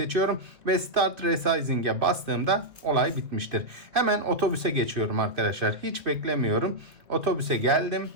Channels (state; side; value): late; left; 2.1 ms